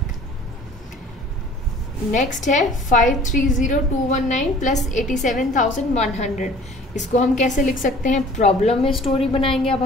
Next है 530,219 प्लस 87,100, इसको हम कैसे लिख सकते हैं, प्रॉब्लम में स्टोरी बनाएंगे। अब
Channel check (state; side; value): normal; both; correlation 0.50